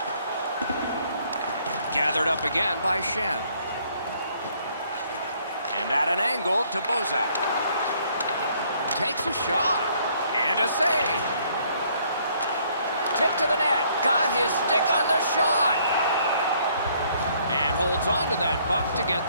Gathered up again by Shen. And at an angle to Bozak. Takes a shot. And a save. Tip to the net. Got his stick on the shot. And holds on to that puck to get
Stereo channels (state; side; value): inverted; both; correlation -0.64